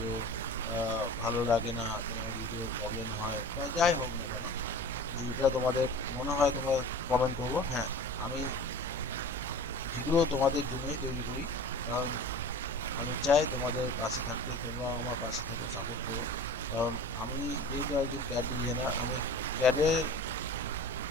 ভালো লাগে না, তোমার ভিডিও প্রবলেম হয়, বা যাই হোক না কেন, যেটা তোমাদের মনে হয় তোমরা কমেন্ট করবো। হ্যাঁ, আমি ভিডিও তোমাদের জন্যই তৈরি করি, কারণ আমি চাই তোমাদের পাশে থাকতে, তোমরা আমার পাশে থাকো, সাপোর্ট করো। কারণ আমি যেহেতু একজন ক্যাড ডিজাইনার, আমি ক্যাডের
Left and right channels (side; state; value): both; normal; correlation 0.39